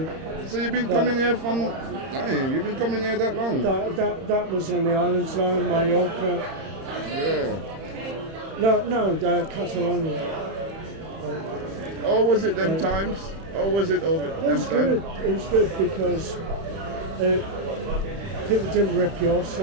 you've been coming here from... You've been coming here that long? That was in the island zone, Mallorca. Yeah. No, Catalonia. Or was it them times? Or was it over It was them good. times? It was good because people didn't rip you off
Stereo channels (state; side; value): late; left; 31 ms